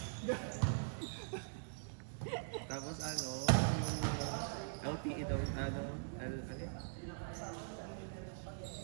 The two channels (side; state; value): left; silent; digital silence